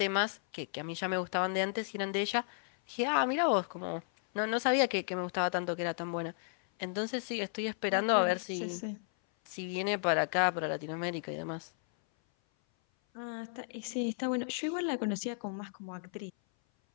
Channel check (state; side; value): silent; right; 55 dB below the other